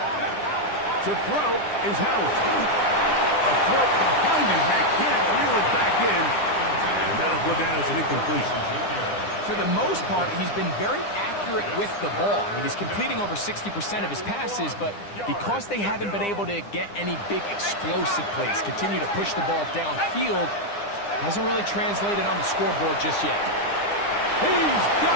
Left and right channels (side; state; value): right; late; 9.9 ms